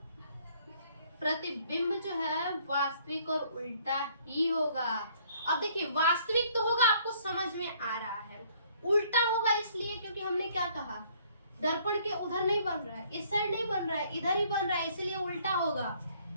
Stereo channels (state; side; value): inverted; both; correlation -0.62